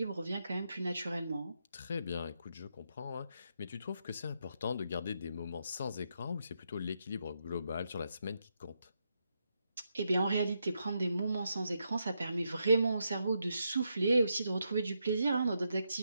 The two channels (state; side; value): inverted; both; correlation -0.81